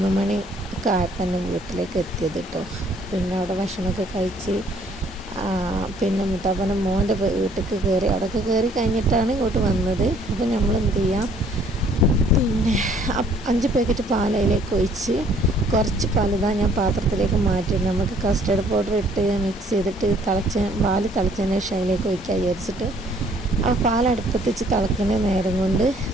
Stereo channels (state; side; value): normal; both; correlation 0.61